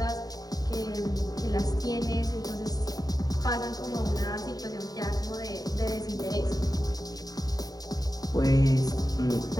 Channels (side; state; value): right; late; 0.18 ms